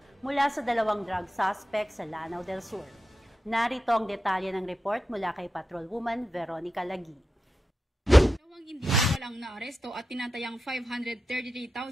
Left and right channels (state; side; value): normal; both; correlation 0.90